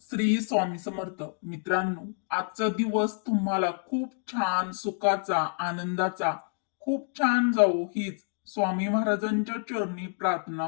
स्वामी समर्थ. मित्रांनो, आजचा दिवस तुम्हाला खूप छान सुखाचा, आनंदाचा, खूप छान जावो हीच स्वामी महाराजांच्या चरणी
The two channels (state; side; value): silent; right; 57 dB below the other